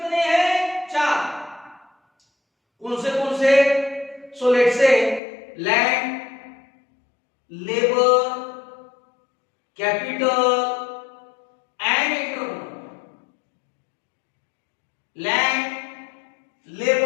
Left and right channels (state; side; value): drops out; right; at 5.2 s